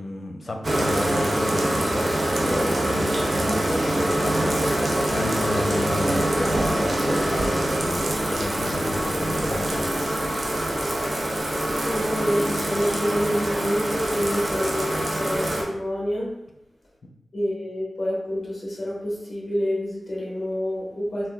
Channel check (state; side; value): normal; both; correlation 0.95